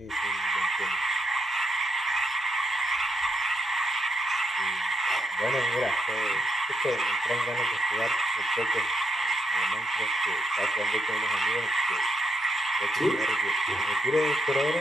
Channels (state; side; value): normal; both; correlation 0.79